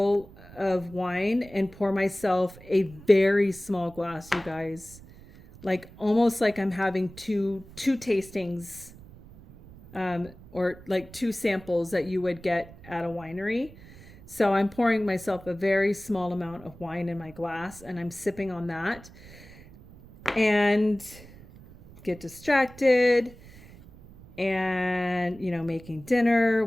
of wine and pour myself a very small glass, you guys. Like almost like I'm having two tastings, or like 2 samples that you would get at a winery. So I'm pouring myself a very small amount of wine in my glass, and I'm sipping on that and get distracted and, making dinner,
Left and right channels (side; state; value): right; noise; rumble, 20 dB below the sound